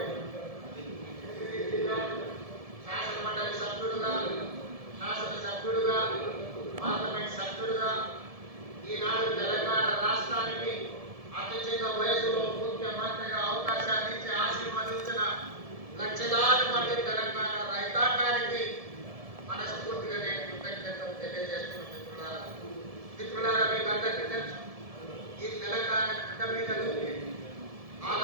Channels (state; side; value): late; left; 1.7 ms